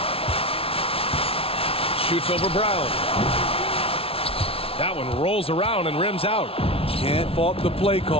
Shoots over Brown. That one rolls around and rims out. Can't fault the play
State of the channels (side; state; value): right; late; 0.27 ms